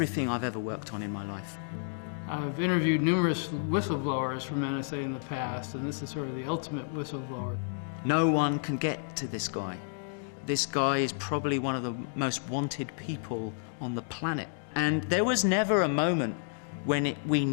I've ever worked on in my life. I've interviewed numerous whistleblowers from NSA in the past, and this is sort of the ultimate whistleblower. No one can get to this guy. This guy is probably one of the most wanted people on the planet. And there was never a moment when we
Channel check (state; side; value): silent; right; digital silence